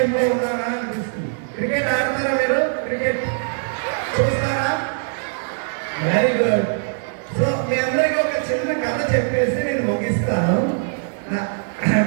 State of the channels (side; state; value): left; silent; digital silence